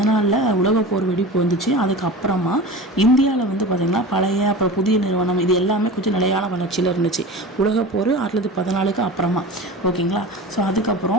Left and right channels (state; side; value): normal; both; correlation 0.33